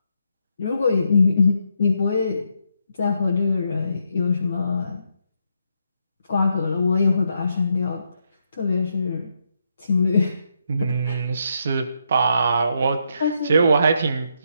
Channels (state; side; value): inverted; both; correlation -0.79